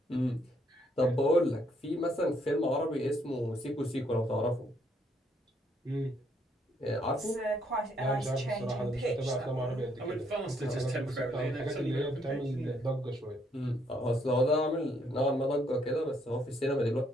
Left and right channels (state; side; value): normal; both; correlation 0.70